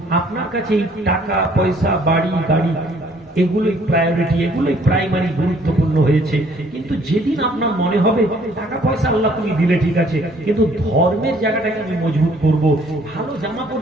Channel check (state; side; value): normal; both; correlation 0.61